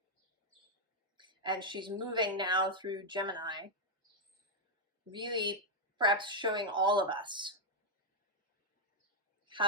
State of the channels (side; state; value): both; normal; correlation -0.01